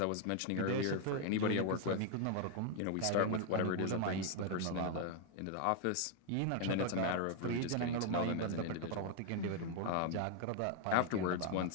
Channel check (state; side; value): different; both; correlation 0.00